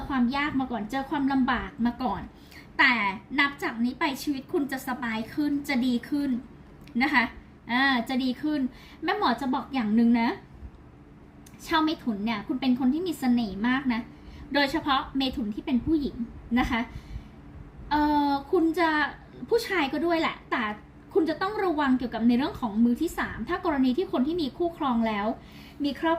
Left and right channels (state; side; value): identical; both; correlation 1.00